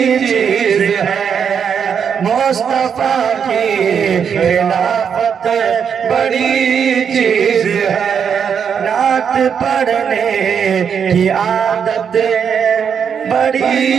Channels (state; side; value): quieter; left; 7.3 dB